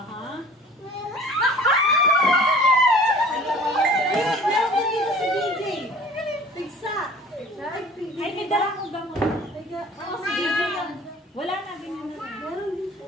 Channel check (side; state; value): both; normal; correlation 0.47